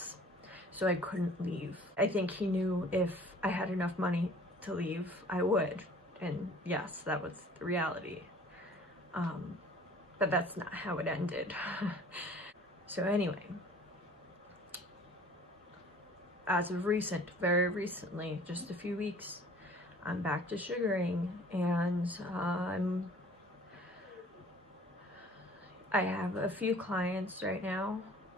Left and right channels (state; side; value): normal; both; correlation 0.50